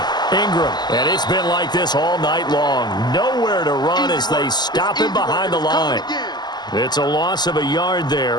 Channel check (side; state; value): right; late; 0.21 ms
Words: Ingram. And it's been like this all night long. Nowhere to run as they stop him behind the line. It's a loss of a yard